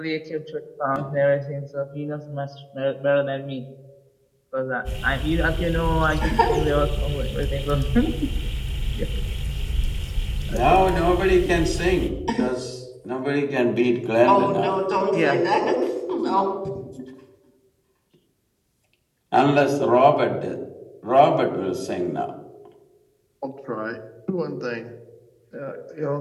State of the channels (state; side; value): identical; both; correlation 1.00